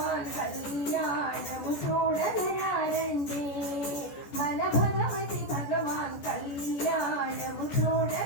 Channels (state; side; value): late; right; 14 ms